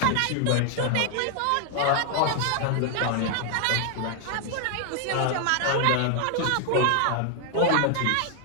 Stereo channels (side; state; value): both; different; correlation 0.00